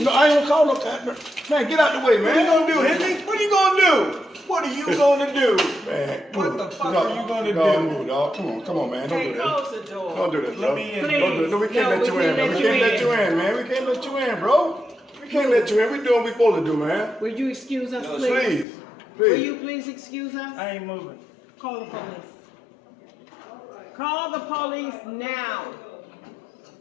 I ain't gonna call no. Man, get out the way, man. What are you gonna do, Henry? What are you gonna do? What are you gonna do? Man, What the fuck are you gonna dog, do? Move, dog. Come on, man. Don't Hey, do that. close the door. Don't do that, Let bro. me in. Don't do it. No, we can't No, let you we in, can't man. We let can't you let you in, man. We can't let you in, bro. We can't let you in. We doing what we supposed to do, man. Will you excuse us, please? Please, Will you please. please excuse us? I ain't moving. Call the police. Call the police now.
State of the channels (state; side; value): drops out; right; at 18.7 s